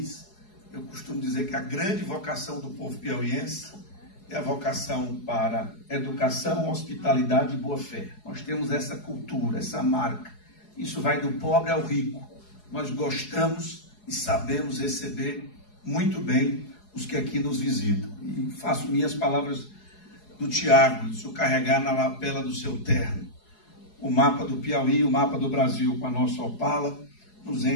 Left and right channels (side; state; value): right; late; 4.8 ms